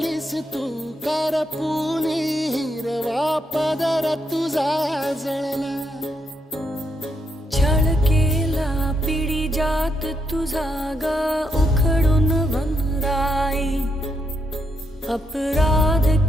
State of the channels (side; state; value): both; normal; correlation 0.79